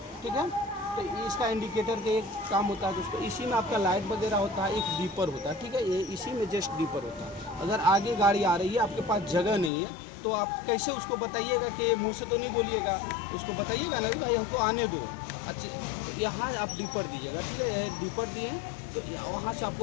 ठीक है। तो इसका इंडिकेटर का एक काम होता है दोस्तों। इसी में आपका लाइट वगैरह होता है, एक डीपर होता है, ठीक है। ये इसी में जस्ट डीपर होता है। अगर आगे गाड़ी आ रही है, आपके पास जगह नहीं है, तो आप कैसे उसको बताइएगा कि मुँह से तो नहीं बोलिएगा, उसको बताइएगा ना भाई हमको आने दो। अच्छा, यहाँ आप डीपर दीजिएगा, ठीक है। डीपर दिए तो वहाँ से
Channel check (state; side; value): drops out; right; at 9.7 s